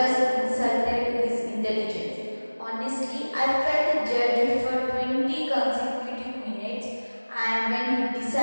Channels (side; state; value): both; inverted; correlation -1.00